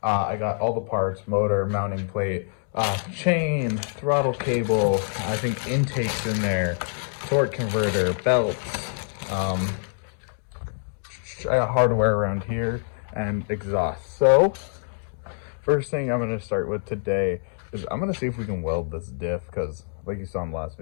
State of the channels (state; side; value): silent; right; digital silence